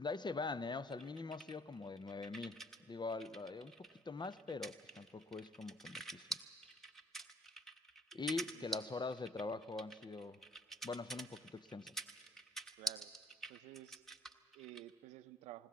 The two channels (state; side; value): normal; both; correlation 0.61